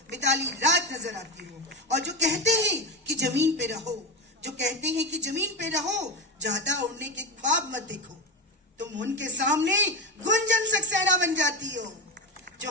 मिताली राज नजर आती हो। और जो कहते हैं कि जमीन पे रहो, जो कहते हैं कि जमीन पे रहो, ज्यादा उड़ने के ख्वाब मत देखो, तुम उनके सामने गुंजन सक्सेना बन जाती हो,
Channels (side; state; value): both; normal; correlation 0.16